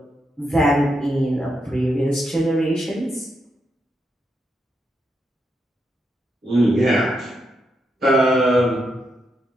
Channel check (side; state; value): both; normal; correlation 0.82